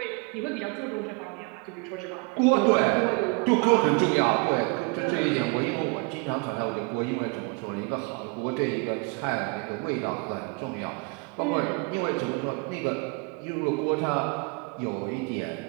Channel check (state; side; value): quieter; left; 30.8 dB